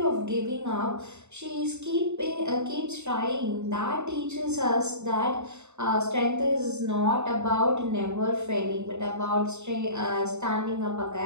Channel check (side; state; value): left; late; 0.82 ms